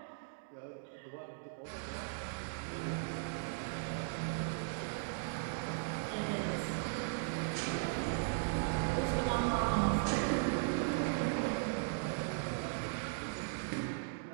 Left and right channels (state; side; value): silent; left; digital silence